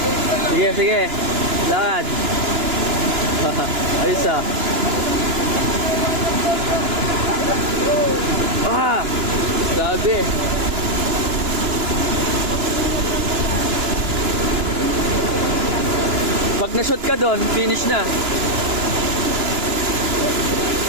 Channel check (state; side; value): late; left; 2.9 ms